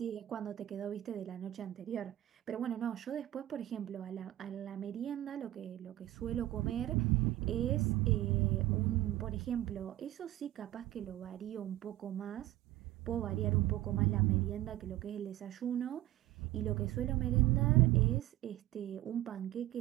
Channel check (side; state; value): left; quieter; 14.9 dB